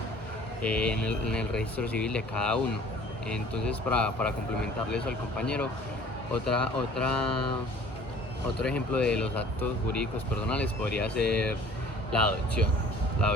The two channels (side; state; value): both; normal; correlation 0.50